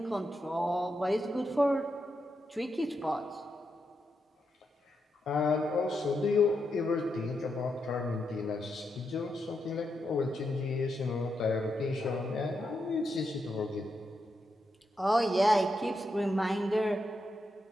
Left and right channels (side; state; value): both; normal; correlation 0.84